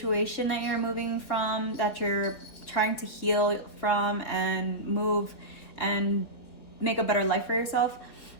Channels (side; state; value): right; late; 4.1 ms